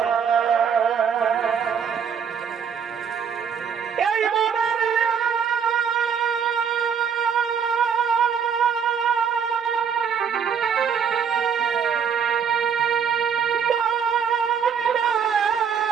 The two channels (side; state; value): left; quieter; 7.1 dB